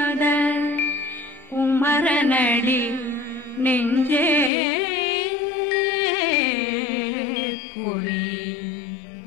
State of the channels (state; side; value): drops out; right; at 4.5 s